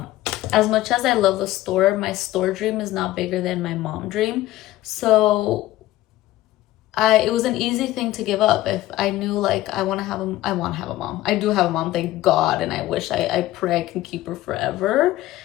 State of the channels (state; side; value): quieter; right; 15.7 dB